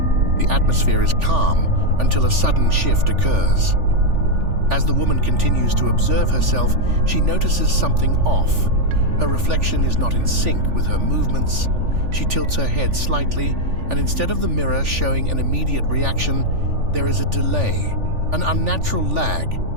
The atmosphere is calm until a sudden shift occurs. As the woman continues to observe herself, she notices something off. Her reflection is not in sync with her movements. She tilts her head slightly, and instead of the mirror showing an immediate reaction, there is a delay, an unnatural lag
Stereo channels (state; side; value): late; left; 3.4 ms